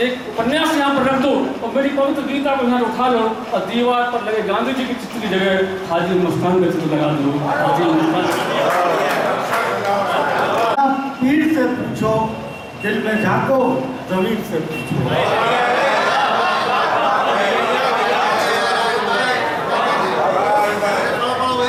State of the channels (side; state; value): both; identical; correlation 1.00